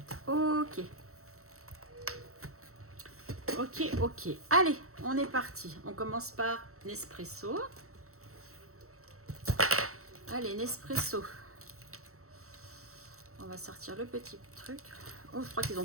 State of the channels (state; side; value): late; left; 0.64 ms